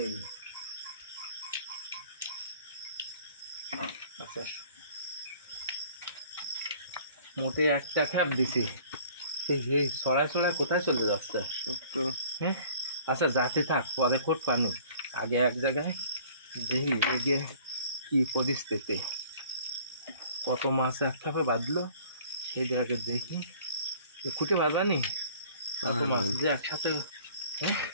আচ্ছা, মোটে একটা খ্যাপ দিছি, সেই ছড়ায় ছড়ায় কোথায় চলে যাচ্ছে সব তো। হ্যাঁ আচ্ছা, যাতে থাক, পরে কোট পানু। আগে এক জায়গায় দেখি এগিয়ে কি পরিস্থিতি, কত মাছ এক খ্যাপে বাঁধলো সেই আগে দেখি। খুঁটে বাঁধানি কত মাছ যে একসাথে।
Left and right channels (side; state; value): both; inverted; correlation -0.51